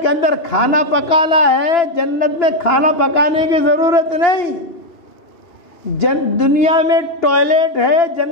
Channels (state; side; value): late; right; 2.9 ms